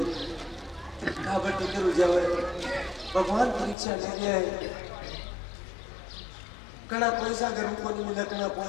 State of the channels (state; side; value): drops out; right; at 3.8 s